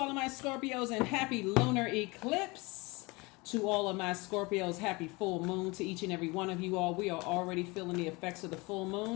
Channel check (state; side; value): quieter; right; 25.3 dB